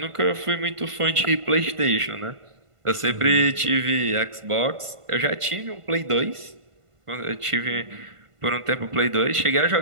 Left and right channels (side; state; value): left; late; 1.5 ms